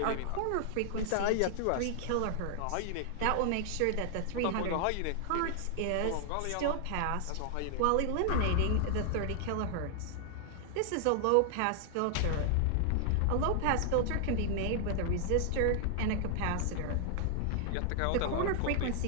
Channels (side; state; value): both; different; correlation 0.00